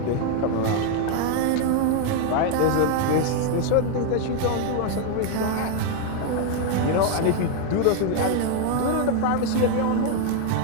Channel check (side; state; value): both; different; correlation 0.01